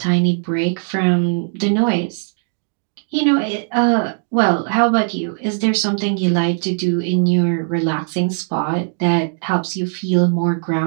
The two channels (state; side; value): silent; left; digital silence